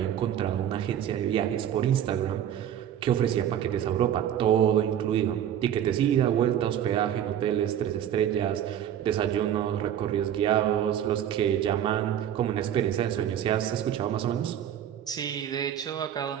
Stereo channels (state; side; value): quieter; left; 10.2 dB